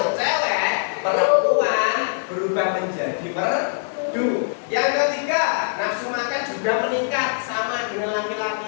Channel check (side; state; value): right; silent; digital silence